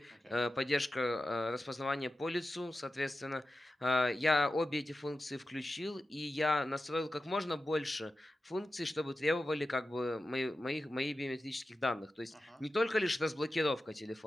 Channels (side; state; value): both; normal; correlation 0.92